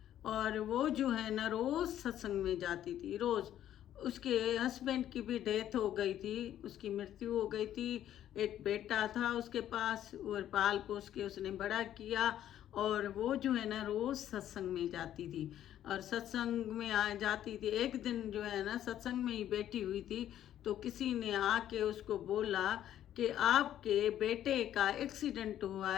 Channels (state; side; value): quieter; right; 11.5 dB